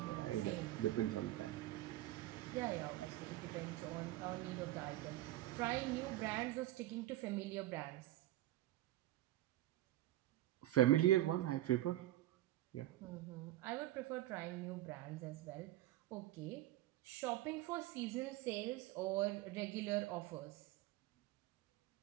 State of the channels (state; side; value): quieter; left; 15.0 dB